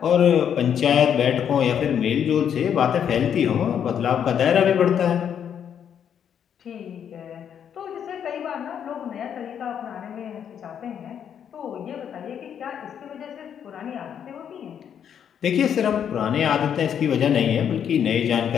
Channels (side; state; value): right; quieter; 8.6 dB